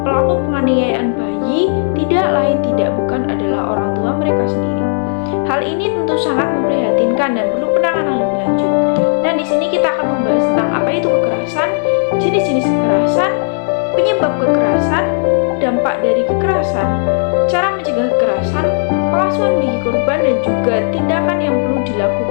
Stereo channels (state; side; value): silent; right; digital silence